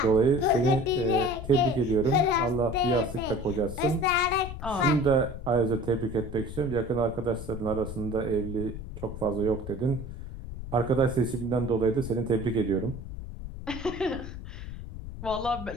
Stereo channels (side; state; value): left; noise; rumble, 10 dB below the sound